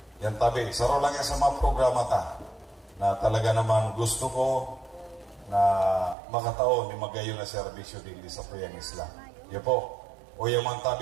Yan, Tabi. Saro lang yan sa mga programa ta na talaga naman gusto ko na makataon ni magayon na serbisyo din sa Puyang Isla. Yan po. O yaman,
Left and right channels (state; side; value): drops out; left; at 6.2 s